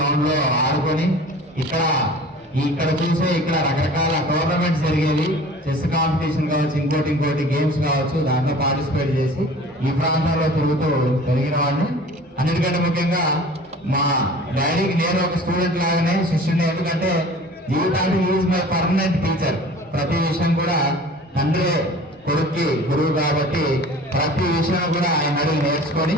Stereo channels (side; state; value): both; normal; correlation 0.43